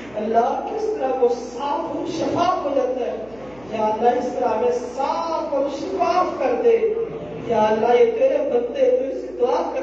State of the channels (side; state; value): right; noise; hum, 25 dB below the sound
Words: اللہ کس طرح وہ صاف اور شفاف ہو جاتا ہے. یا اللہ اس طرح ہمیں صاف اور شفاف کر دے. یا اللہ یہ تیرے بندے تو اس سے دعا